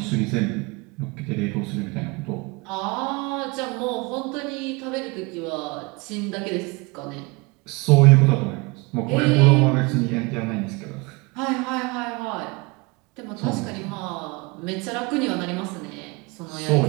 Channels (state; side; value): quieter; left; 26.2 dB